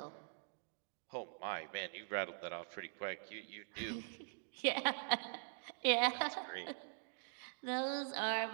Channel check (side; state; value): left; silent; digital silence